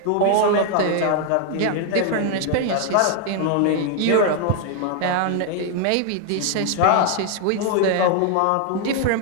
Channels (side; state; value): both; different; correlation 0.00